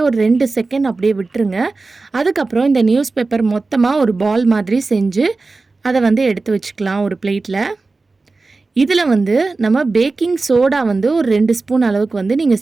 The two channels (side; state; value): left; quieter; 3.7 dB